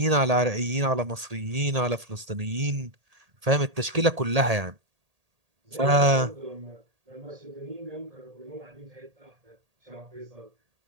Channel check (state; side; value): late; left; 1.8 ms